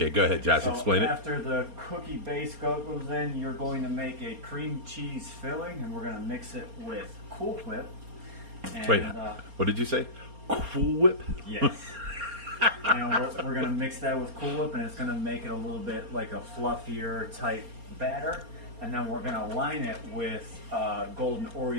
go ahead, Josh. Explain it. After the cookie base goes in, you're going to make a cream cheese filling, and we're going to mix it with Cool Whip. And, wait, what did you say? Cool Whip? Yes. And we're going to mix that with Cool Whip, and it's going to make it a little bit like a fluffier type batter. And then we're going to line it with golden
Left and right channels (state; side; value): late; left; 4.3 ms